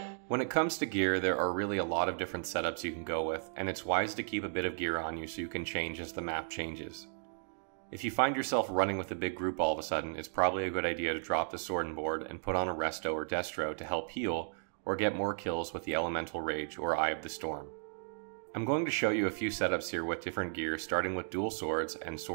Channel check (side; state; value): left; silent; digital silence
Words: When it comes to gear, there are really a lot of different setups you can go with, and it's wise to keep a bit of gear on you so you can change as the map changes. If you find yourself running with a big group all of a sudden, it's probably a good idea to drop the sword and board and put on a Resto or Destro to help heal or get more kills with the Elemental Rage or Eye of the Storm. I'm going to show you a few setups here with different gear, starting with dual swords and